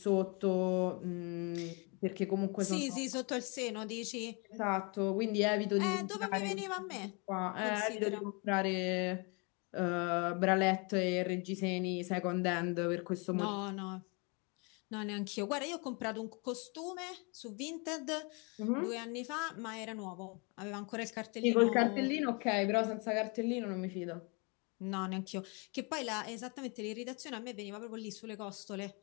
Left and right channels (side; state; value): right; quieter; 31.9 dB